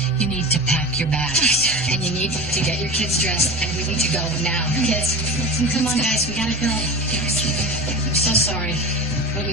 You need to pack your bags. And you need to get your kids dressed, and we need to go now. Kids, come on, guys, we gotta go. I'm so sorry, but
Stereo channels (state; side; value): normal; both; correlation 0.30